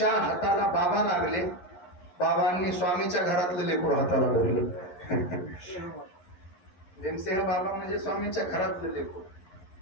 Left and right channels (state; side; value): late; right; 11 ms